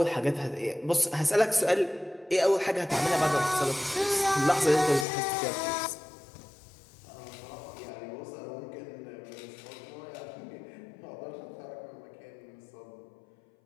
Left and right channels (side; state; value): right; drops out; at 5.1 s